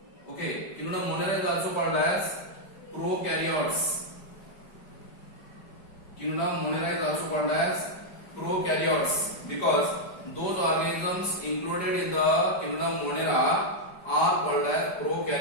Okay, Kingdom Monera is also called as prokaryotes. Kingdom Monera is also called as prokaryotes because those organisms included in the Kingdom Monera are called as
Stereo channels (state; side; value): late; right; 5.0 ms